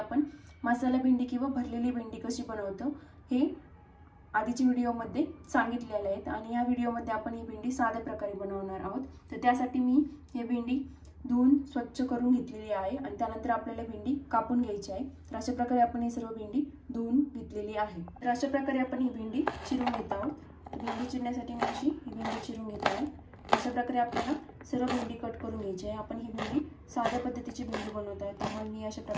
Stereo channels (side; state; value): both; identical; correlation 1.00